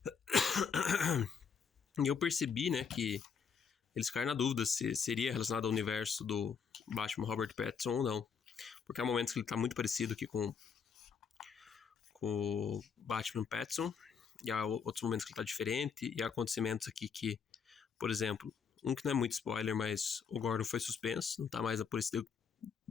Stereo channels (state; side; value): quieter; right; 6.3 dB